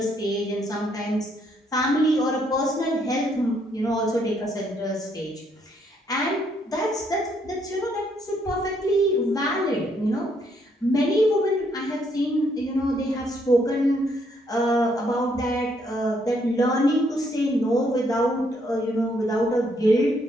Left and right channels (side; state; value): both; normal; correlation 0.71